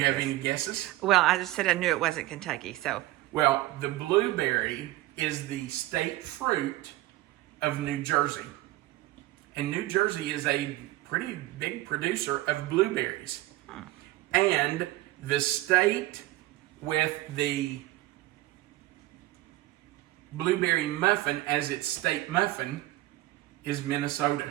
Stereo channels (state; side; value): quieter; left; 17.1 dB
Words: to have this. any guesses? Well, I just said I knew it wasn't Kentucky, so. Well, the blueberry is the state fruit of New Jersey. And New Jersey is a pretty big producer of blueberries. And the state with the blueberry muffin as its state muffin is